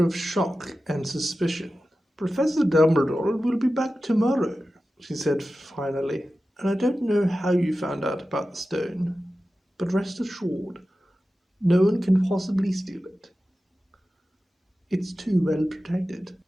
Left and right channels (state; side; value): normal; both; correlation 0.94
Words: of shock and suspicion. "Professor Dumbledore will be back tomorrow," she said finally, "and I don't know how you found out about the stone." But rest assured, no one can possibly steal it. It's too well protected.